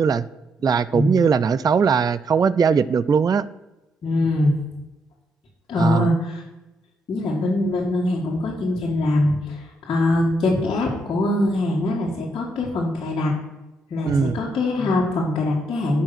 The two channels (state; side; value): normal; both; correlation 0.77